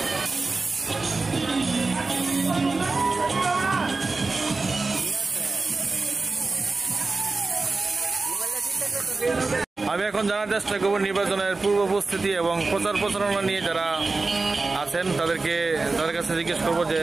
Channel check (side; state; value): left; quieter; 3.7 dB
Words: আমি এখন জানার চেষ্টা করবো নির্বাচনের পূর্ব প্রস্তুতি এবং প্রচার প্রচারণা নিয়ে যারা আছেন তাদের কাছে জিজ্ঞেস করবো যে